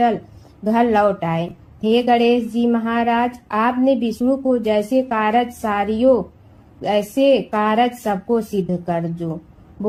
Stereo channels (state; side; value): identical; both; correlation 1.00